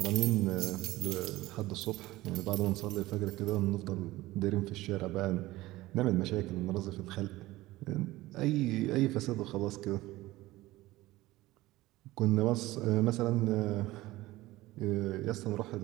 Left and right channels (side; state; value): left; quieter; 18.1 dB